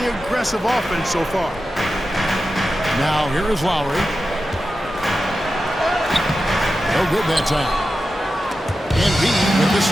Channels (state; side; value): normal; both; correlation 0.92